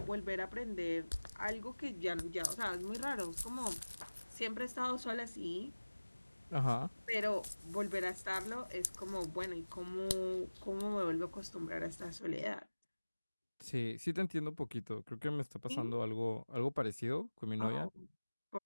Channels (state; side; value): inverted; both; correlation -1.00